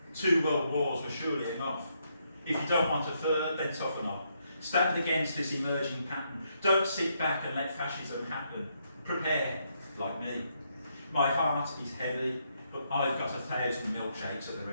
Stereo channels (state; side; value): inverted; both; correlation -0.76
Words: 2 world wars were surely enough. If you don't want a third, then toughen up. Stand against this emerging pattern. Don't sit back and let fascism happen. Prepare, like me. My heart is heavy, but I've got 1,000 milkshakes at the